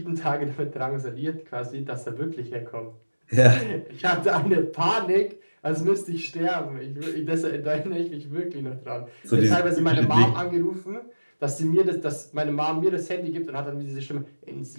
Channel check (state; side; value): inverted; both; correlation -1.00